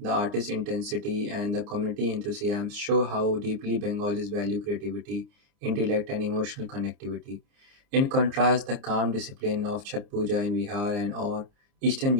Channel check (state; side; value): late; left; 29 ms